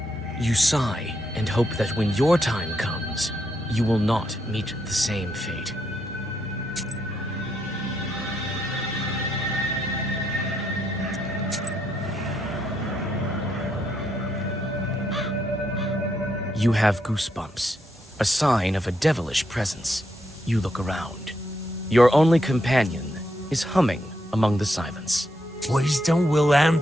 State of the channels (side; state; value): both; normal; correlation 0.79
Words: You sigh and hope that when your time comes, you will not meet the same fate. You have goosebumps, a sign of a devilish presence. You look around. Your only companion is humming among the silence. Wisdom will